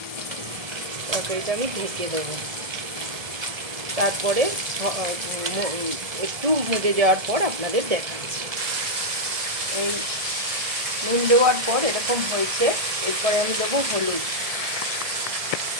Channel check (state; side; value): late; left; 1.7 ms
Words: তরকারিটা আমি ঢেকে দেবো। তারপরে একটু মজে যাওয়ার পর আপনাদের দেখাচ্ছি। এই নুন দেওয়ার পর এরকম হয়েছে। এরপরে আমি দেবো হলুদ